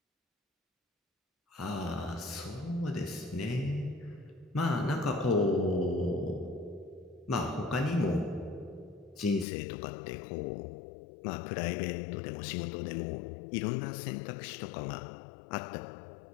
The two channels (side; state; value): right; drops out; at 9.5 s